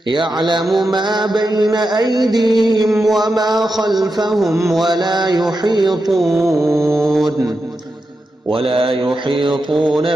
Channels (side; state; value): both; normal; correlation 0.88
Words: يعلم ما بين أيديهم وما خلفهم ولا يحيطون